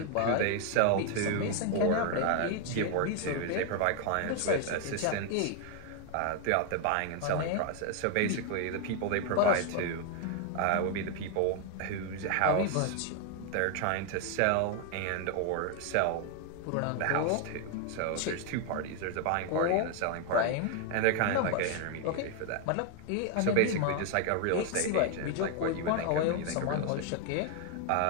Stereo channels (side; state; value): both; different; correlation 0.01